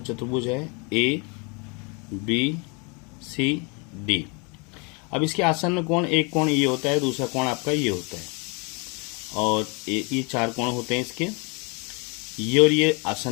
चतुर्भुज है ए बी सी डी। अब इसके आसन्न कोण, एक कोण ये होता है, दूसरा कोण आपका ये होता है, और ये 4 कोण होते हैं इसके। ये और ये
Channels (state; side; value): quieter; right; 31.8 dB